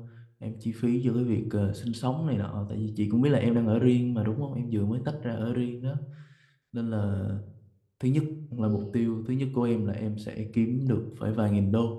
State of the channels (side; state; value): both; identical; correlation 1.00